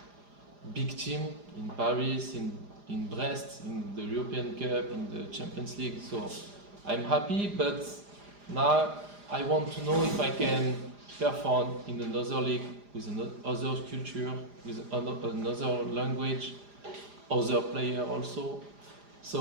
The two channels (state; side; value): late; left; 4.9 ms